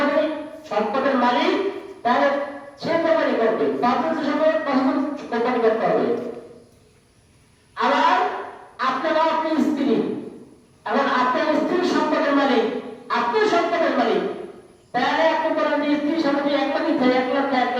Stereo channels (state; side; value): identical; both; correlation 1.00